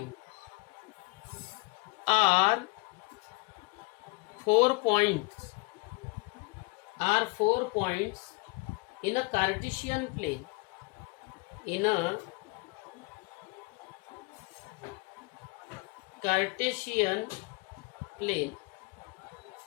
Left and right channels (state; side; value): quieter; right; 26.7 dB